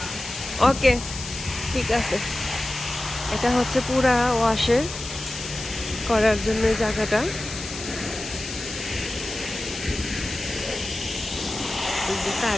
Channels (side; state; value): left; noise; hiss, 9 dB below the sound